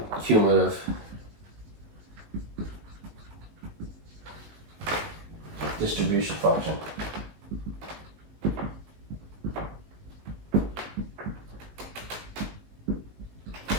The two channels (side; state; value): left; late; 19 ms